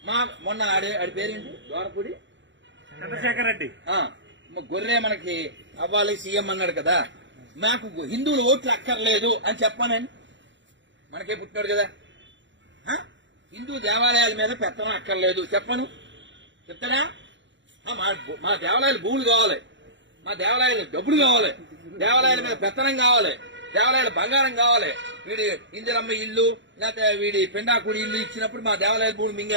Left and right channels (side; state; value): left; late; 0.54 ms